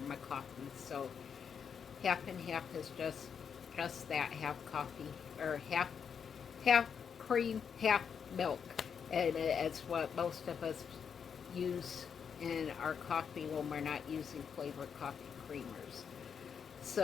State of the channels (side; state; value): right; quieter; 7.0 dB